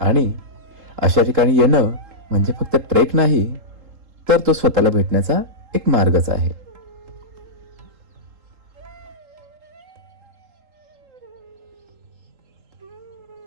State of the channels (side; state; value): left; late; 3.8 ms